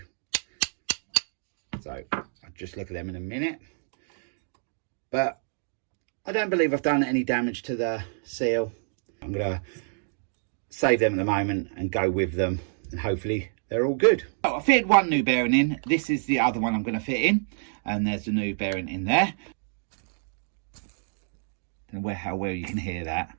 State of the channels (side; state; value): left; silent; digital silence